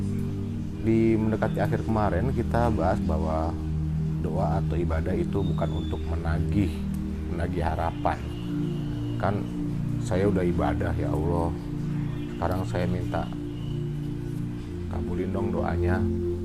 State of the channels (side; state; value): both; identical; correlation 1.00